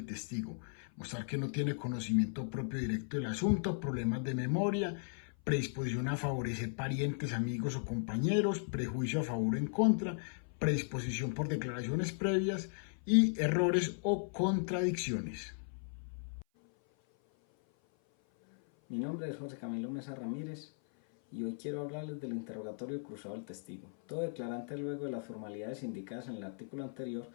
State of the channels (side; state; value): right; silent; 53 dB below the other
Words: testigo. mostrar que no tiene conocimiento propio directo del asunto, problemas de memoria, predisposición a favorecer parientes, amigos o compañeros, prejuicio a favor o en contra, predisposición por declaraciones previas y errores o contradicciones. Mi nombre es José Camilo Mesa Ramírez y hoy quiero hablarles del interrogatorio cruzado del testigo. Todo declarante, luego de las formalidades indicadas en el artículo anterior,